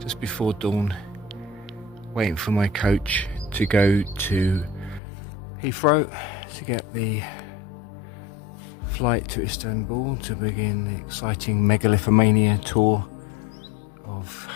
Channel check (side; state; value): right; drops out; at 5.0 s